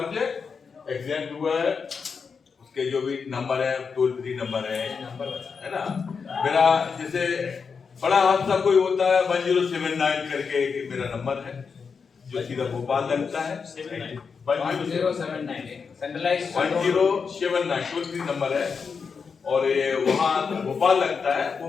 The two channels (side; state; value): right; quieter; 5.6 dB